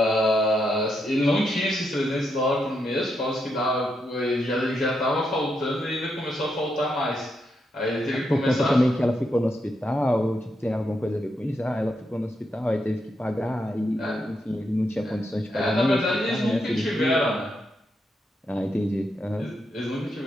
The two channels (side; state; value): both; normal; correlation 0.82